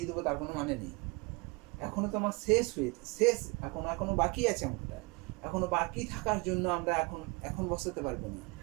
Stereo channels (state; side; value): quieter; left; 28.0 dB